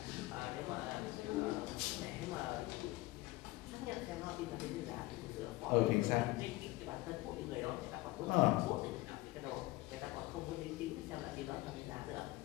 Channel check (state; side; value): quieter; right; 19.7 dB